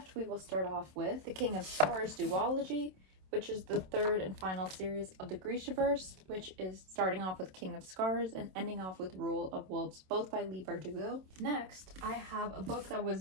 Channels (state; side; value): late; left; 27 ms